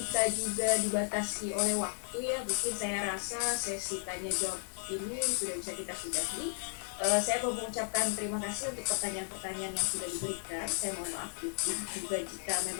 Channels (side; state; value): right; silent; digital silence